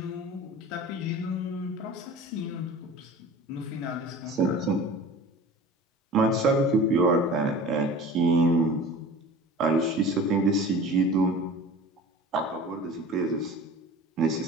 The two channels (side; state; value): both; normal; correlation 0.39